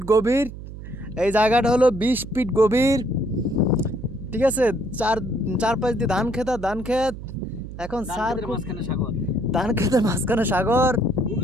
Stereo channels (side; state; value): right; noise; hum, 12 dB below the sound